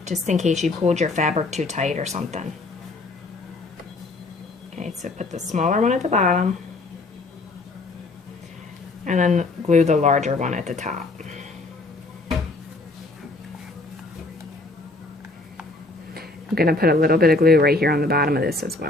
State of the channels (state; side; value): quieter; right; 3.1 dB